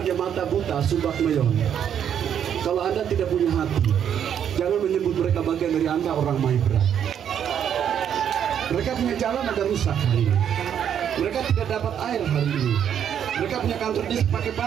mata buta, subak meyon. Kalau Anda tidak punya hati, jangan menyebut mereka bagian dari Anda orang Maibra. Mereka punya jalan ada rusak hari ini. Mereka tidak dapat air hari ini. Mereka punya kantor desa pakai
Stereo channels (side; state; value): left; quieter; 9.0 dB